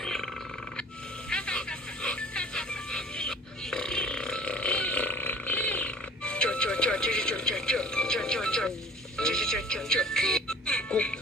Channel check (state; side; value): normal; both; correlation 0.48